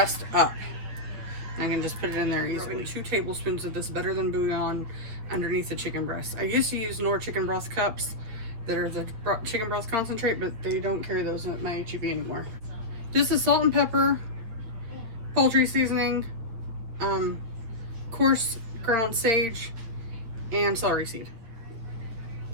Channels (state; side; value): late; left; 8.9 ms